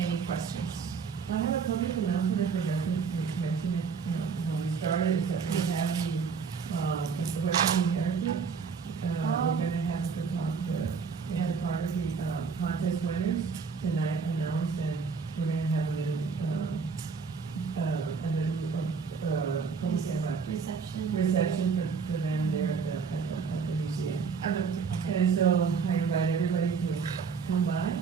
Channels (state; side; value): quieter; left; 5.6 dB